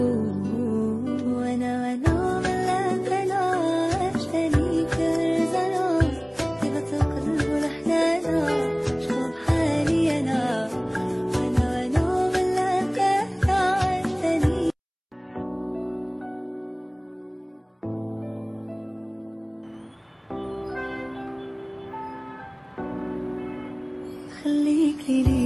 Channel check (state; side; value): identical; both; correlation 1.00